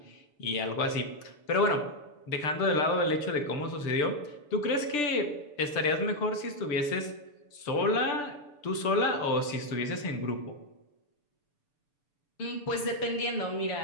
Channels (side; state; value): right; late; 6.8 ms